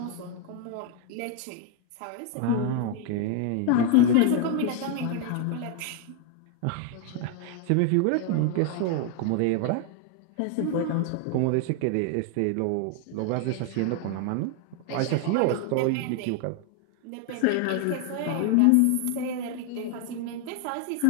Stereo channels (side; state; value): both; different; correlation 0.01